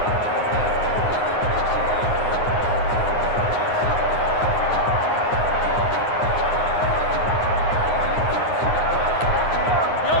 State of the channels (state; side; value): late; right; 9.6 ms